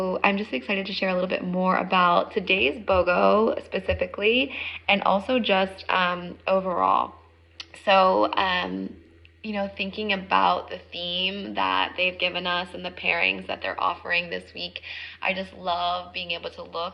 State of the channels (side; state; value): both; identical; correlation 1.00